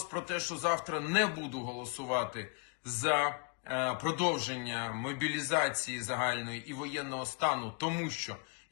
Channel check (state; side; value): quieter; right; 35.0 dB